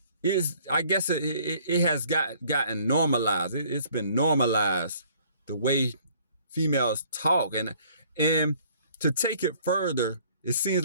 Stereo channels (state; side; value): inverted; both; correlation -0.59